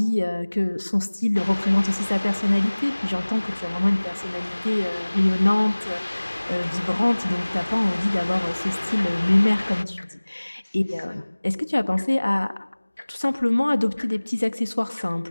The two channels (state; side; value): inverted; both; correlation -1.00